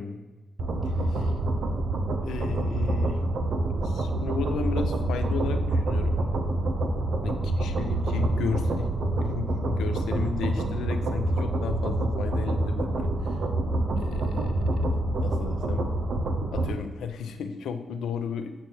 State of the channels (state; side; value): normal; both; correlation 0.78